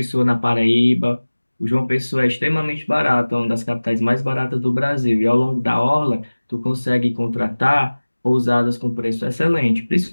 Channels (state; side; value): inverted; both; correlation -1.00